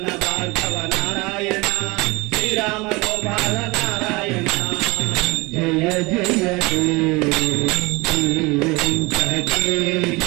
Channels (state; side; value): quieter; left; 24.5 dB